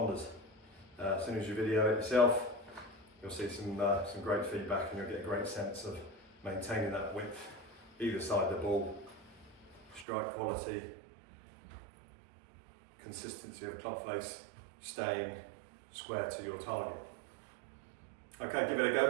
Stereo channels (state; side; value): drops out; left; at 10.1 s